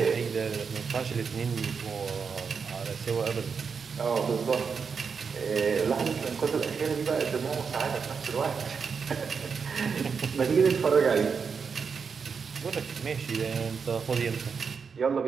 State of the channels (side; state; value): left; quieter; 5.8 dB